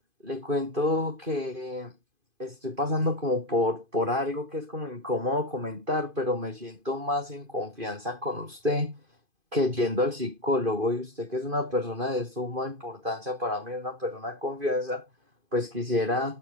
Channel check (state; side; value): late; left; 2.5 ms